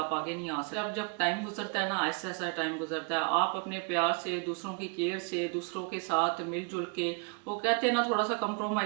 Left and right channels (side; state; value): left; quieter; 35.9 dB